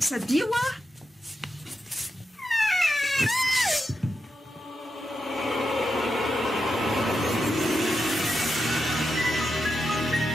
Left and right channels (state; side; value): normal; both; correlation 0.87